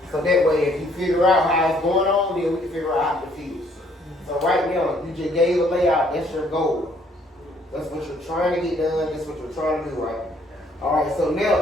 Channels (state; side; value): normal; both; correlation 0.64